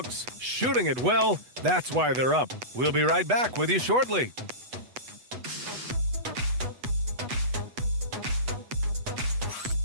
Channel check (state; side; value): late; left; 8.1 ms